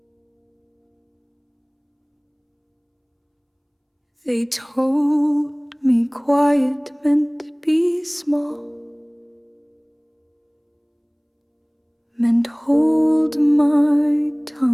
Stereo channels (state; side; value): identical; both; correlation 1.00